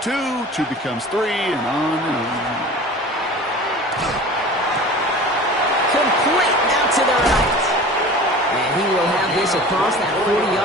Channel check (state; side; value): normal; both; correlation 0.39